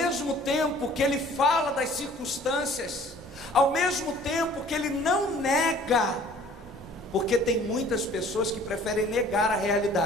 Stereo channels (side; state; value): both; normal; correlation 0.52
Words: tempo que ele fala das circunstâncias, ao mesmo tempo que ele não nega, porque tem muitas pessoas que preferem negar a